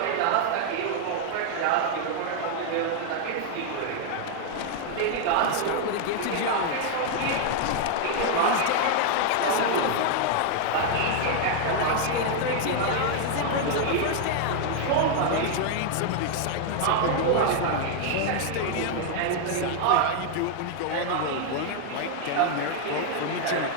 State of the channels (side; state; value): both; different; correlation 0.00